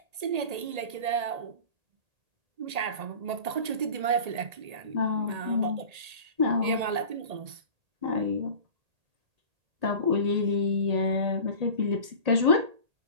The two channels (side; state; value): left; late; 1.8 ms